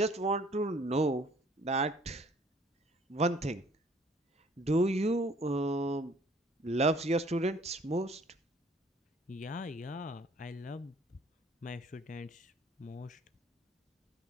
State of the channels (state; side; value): normal; both; correlation 0.57